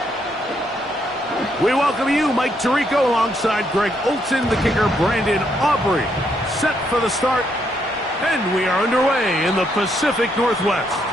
We welcome you, Mike Tirico, alongside Greg Olson, the kicker, Brandon Aubrey. Set for the start, and we are underway in the Pacific Northwest.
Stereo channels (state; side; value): normal; both; correlation 0.75